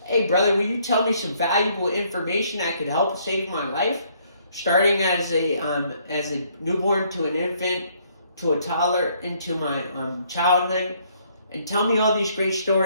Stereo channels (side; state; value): both; inverted; correlation -0.66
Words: hey brother, will you tell me some valuable information that could help save my life? Starting as a newborn to an infant, to a toddler, into my childhood. And tell me all these great